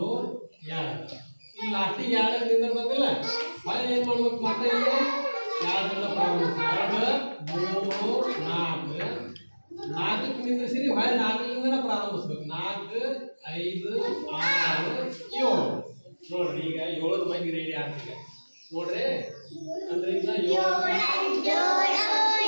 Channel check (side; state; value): both; inverted; correlation -1.00